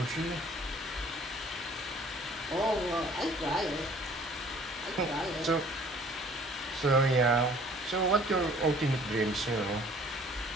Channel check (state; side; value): normal; both; correlation 0.54